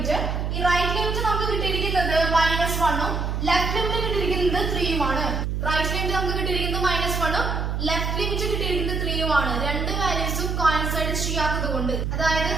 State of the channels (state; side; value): noise; right; hum, 1 dB below the sound